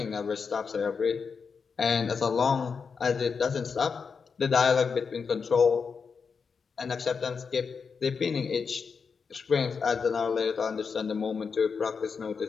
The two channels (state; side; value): quieter; right; 5.6 dB